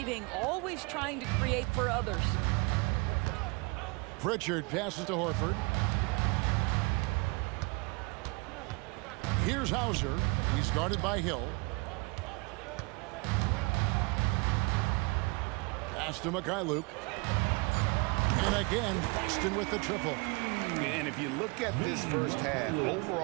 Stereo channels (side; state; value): left; quieter; 28.6 dB